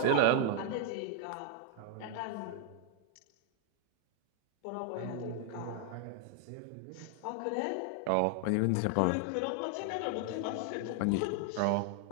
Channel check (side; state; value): both; different; correlation 0.00